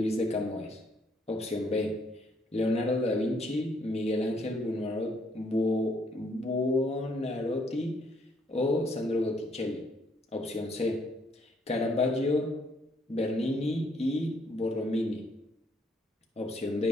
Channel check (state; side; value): normal; both; correlation 0.69